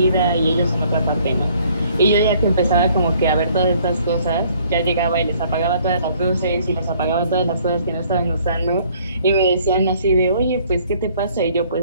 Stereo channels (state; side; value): inverted; both; correlation -0.60